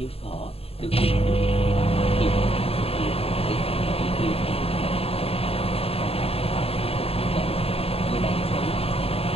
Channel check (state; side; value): late; right; 0.28 ms